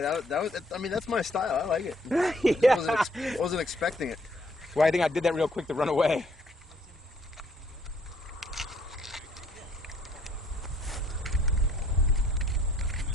that was. I mean, that's my style. I like it. Yeah. I wasn't expecting it. Well, I think I did that real quick to run away.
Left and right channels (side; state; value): both; normal; correlation 0.64